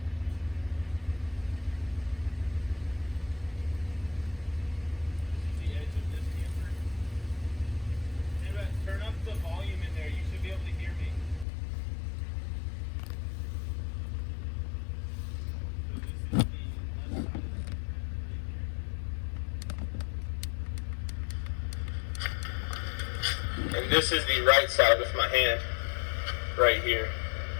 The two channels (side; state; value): right; drops out; at 11.5 s